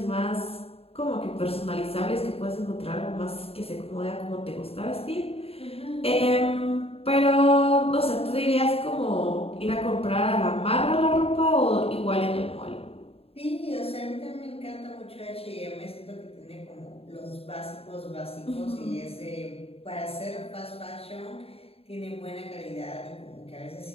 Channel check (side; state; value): right; late; 0.28 ms